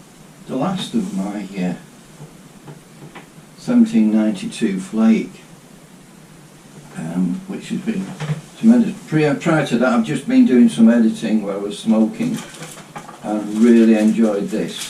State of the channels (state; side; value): identical; both; correlation 1.00